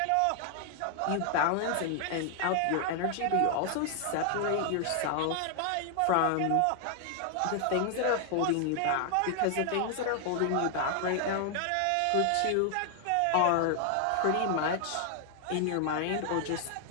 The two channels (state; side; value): different; both; correlation 0.00